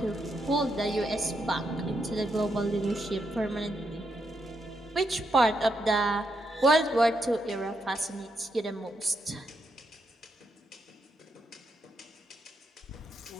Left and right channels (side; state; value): both; normal; correlation 0.81